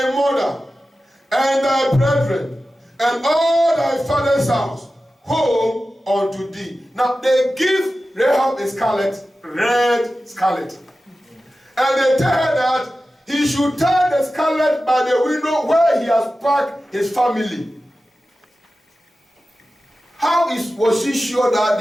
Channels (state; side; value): normal; both; correlation 0.94